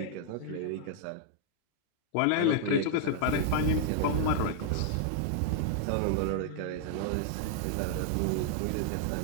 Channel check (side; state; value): both; different; correlation 0.00